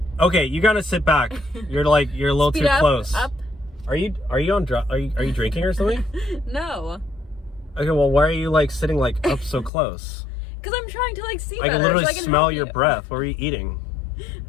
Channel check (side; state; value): right; drops out; at 9.7 s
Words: Okay, you gotta sit back. You're a little too close. Up. Are you drinking or something? No. Okay, well, why are you like sitting like up so close? Because I'm trying to like see I better. can literally so I can smell help your you. breath. What are you eating?